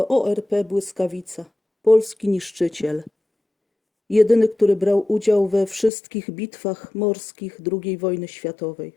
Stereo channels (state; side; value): drops out; right; at 5.9 s